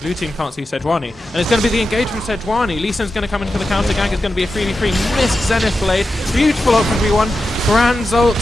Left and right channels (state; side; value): normal; both; correlation 0.90